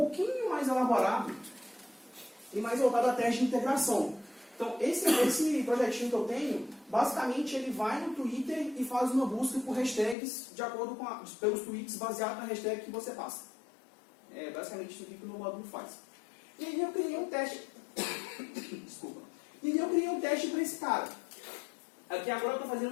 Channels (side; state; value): right; drops out; at 10.2 s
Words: mais elaborado e mais voltado a teste de integração. Então, esse projetinho que eu tenho, basicamente ele vai no Twitter e faz uma busca por hashtags de acordo com pelos tweets baseado na hashtag que você passa. É basicamente isso aqui que o meu módulo faz. E aí eu criei um teste. Desculpa. E aí eu criei um teste para esse cara. Aqui agora eu estou